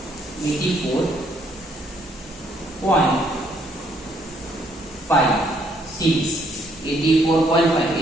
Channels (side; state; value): both; normal; correlation 0.69